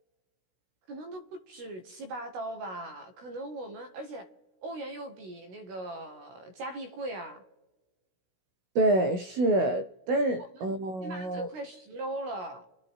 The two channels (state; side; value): late; left; 16 ms